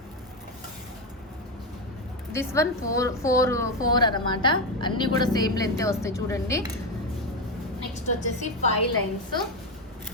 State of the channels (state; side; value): normal; both; correlation 0.11